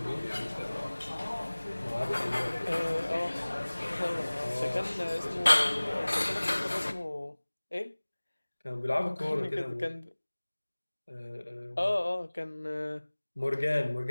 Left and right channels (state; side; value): inverted; both; correlation -1.00